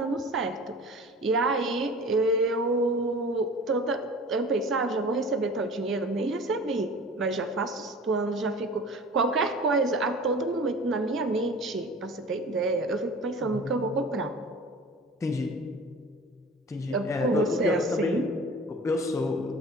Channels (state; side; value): normal; both; correlation 0.41